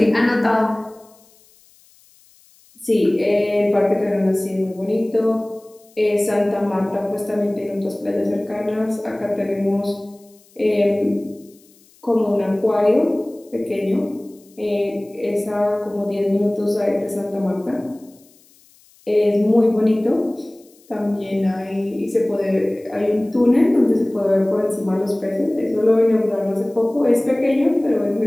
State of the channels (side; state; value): left; noise; hiss, 30 dB below the sound